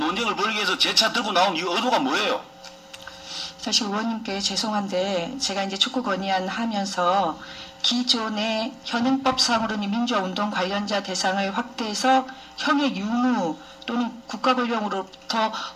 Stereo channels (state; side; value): identical; both; correlation 1.00